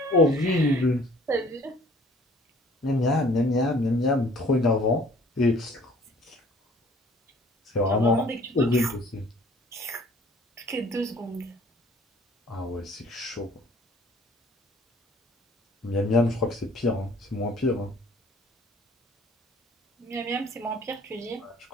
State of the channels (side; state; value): both; normal; correlation 0.54